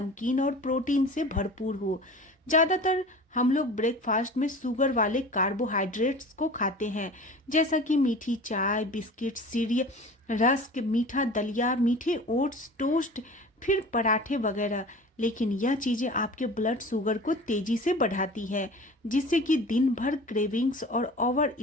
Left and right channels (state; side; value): normal; both; correlation 0.39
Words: और प्रोटीन से भरपूर हो। ज़्यादातर हम लोग ब्रेकफास्ट में शुगर वाले कार्बोहाइड्रेट्स को खाते हैं, जैसा कि मीठी चाय, बिस्किट, सीरियल, रस्क, मीठा दलिया, मीठे ओट्स, टोस्ट, फिर पराठे वगैरह। लेकिन यह चीज़ें आपके ब्लड शुगर को तेजी से बढ़ाती है, जिससे कि दिन भर क्रेविंग्स और ओवर